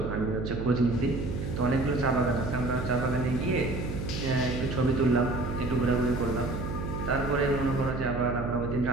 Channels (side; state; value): right; noise; hum, 5 dB below the sound